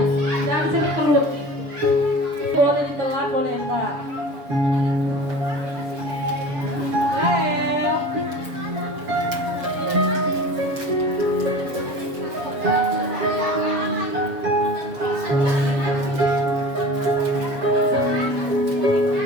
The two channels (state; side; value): late; left; 7.0 ms